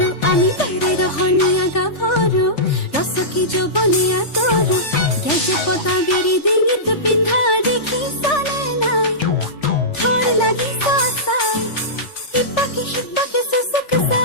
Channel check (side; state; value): right; late; 3.4 ms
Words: আমি তাৰে ৰহনীয়া গাভৰু ৰসকি যৌবনে আতৰু গেজে পতা বিৰি ডিঙিত পিন্ধা দেখিছানে নাই থৰ লাগি চাই সিপাকে চুচুক